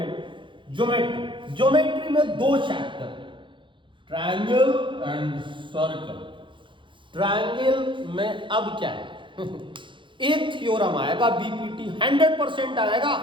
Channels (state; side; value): late; left; 0.24 ms